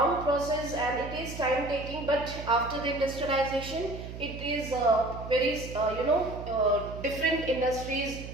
process and it is time taking, but after the industrialization it is very different industries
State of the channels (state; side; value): noise; right; hum, 10 dB below the sound